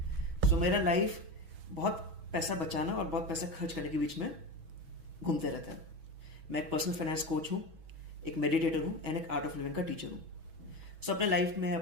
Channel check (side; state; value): left; late; 6.2 ms